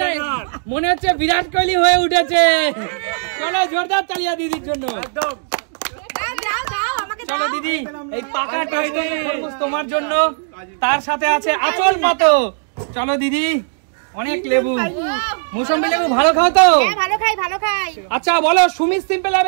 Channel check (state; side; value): silent; left; digital silence